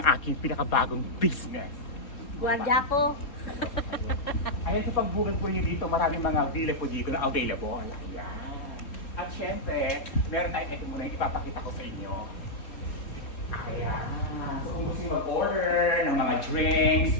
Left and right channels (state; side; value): late; right; 3.7 ms